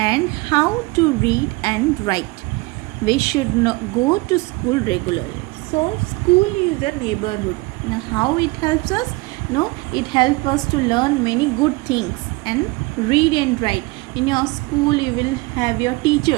how to read and write. We should go to school regularly. So school is a neighborhood. Now how it helps us? No, it helps us to learn many good things and read and write. In your school you will have your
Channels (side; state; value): left; quieter; 23.9 dB